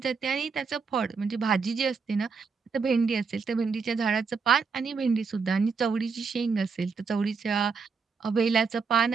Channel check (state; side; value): quieter; left; 5.2 dB